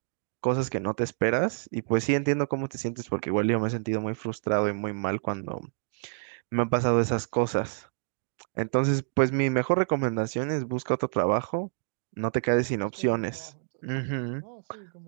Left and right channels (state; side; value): silent; left; digital silence